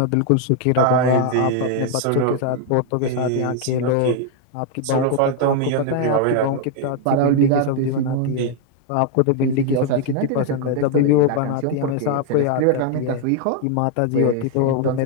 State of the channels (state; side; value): different; both; correlation 0.00